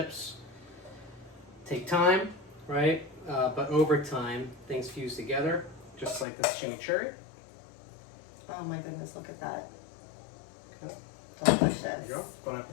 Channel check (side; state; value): right; drops out; at 6.2 s